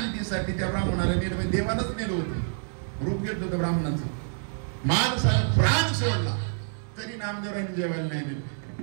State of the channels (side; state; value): left; silent; digital silence